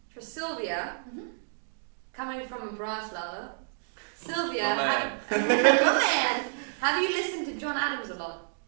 for Silvia, coming from a brass lover. Sylvia, my man, have you listened to John Adams a lot?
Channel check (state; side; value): silent; left; digital silence